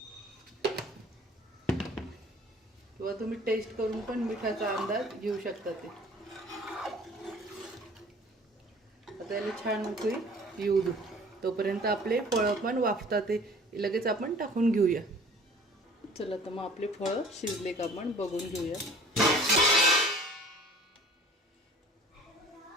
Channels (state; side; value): normal; both; correlation 0.50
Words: किंवा तुम्ही टेस्ट करून पण मिठाचा अंदाज घेऊ शकता. ते आता याला छान उकळी येऊ दे. तोपर्यंत आपले फळं पण वाफतात, ते लगेच आपण टाकून घेऊया. चला तर मग आपले फळं शिजले का आपण बघून घेऊया.